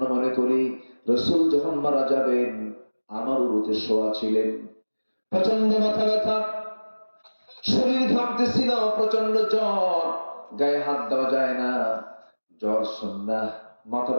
মনে করি, রাসূল যখন মারা যাবেন আমার উরুতে শোয়া ছিলেন। প্রচন্ড মাথা ব্যথা, শরীর ঘামতেছিল, প্রচন্ড জ্বর, গায়ে হাত দেওয়া যায় না। জ্বর সুন্নাহ, মাথা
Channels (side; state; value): both; inverted; correlation -1.00